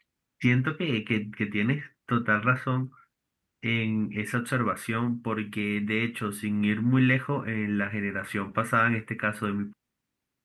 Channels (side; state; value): both; identical; correlation 1.00